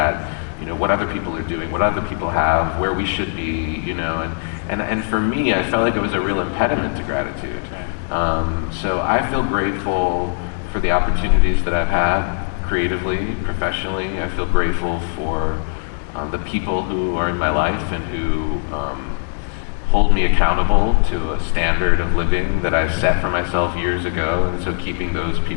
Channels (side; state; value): right; silent; digital silence